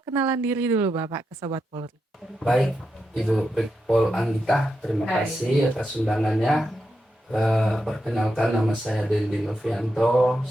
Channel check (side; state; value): both; normal; correlation 0.86